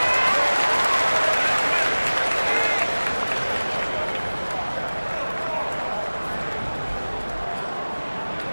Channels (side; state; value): both; inverted; correlation -1.00